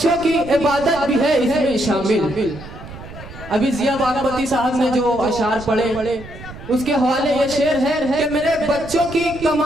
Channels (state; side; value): noise; right; rumble, 15 dB below the sound